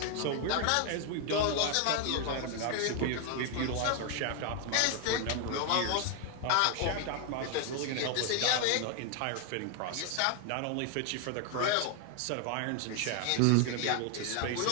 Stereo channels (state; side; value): different; both; correlation 0.01